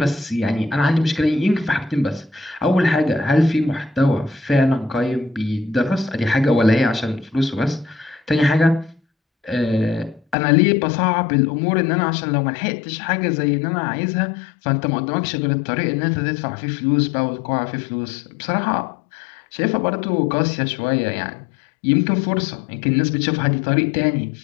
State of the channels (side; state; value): right; drops out; at 10.4 s